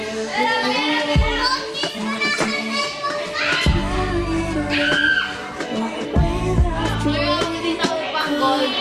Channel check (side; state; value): both; identical; correlation 1.00